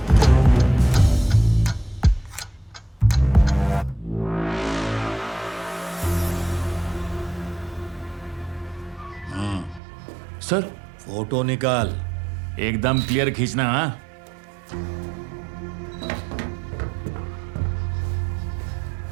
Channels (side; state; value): left; drops out; at 9.8 s